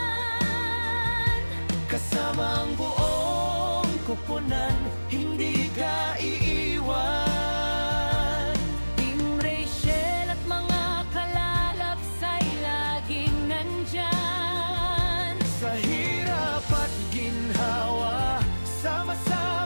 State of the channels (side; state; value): both; inverted; correlation -1.00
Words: Kasama ang buong koponan, hindi ka iiwan. Team Rachel at mga kalalabs ay laging nandyan. Sa hirap at ginhawa,